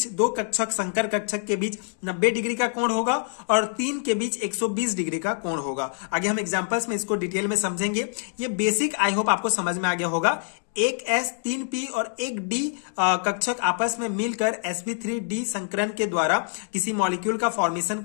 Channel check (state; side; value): silent; right; 61 dB below the other